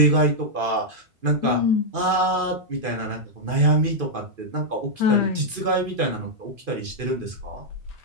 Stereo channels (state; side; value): late; left; 2.5 ms